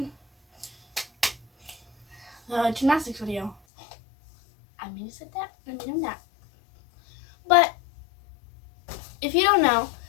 the gymnastics video. I mean to say that, I mean that. But if you don't know,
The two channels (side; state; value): right; drops out; at 3.6 s